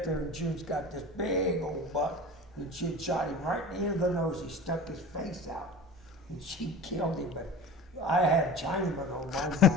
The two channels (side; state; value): both; normal; correlation 0.36